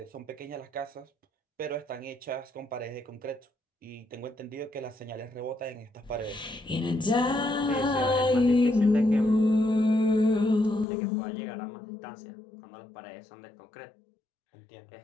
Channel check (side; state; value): right; drops out; at 10.9 s